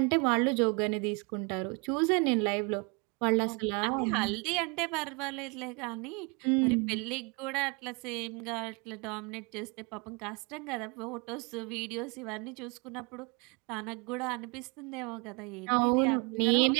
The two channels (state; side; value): quieter; left; 31.0 dB